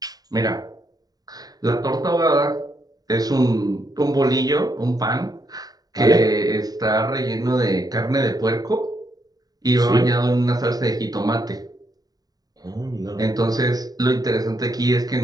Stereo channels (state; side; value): late; left; 0.18 ms